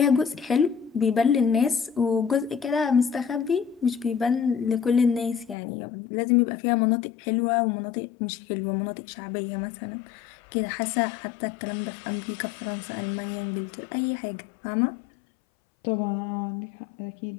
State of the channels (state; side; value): drops out; right; at 5.6 s